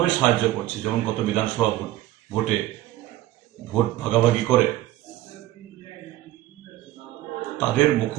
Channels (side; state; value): left; quieter; 15.2 dB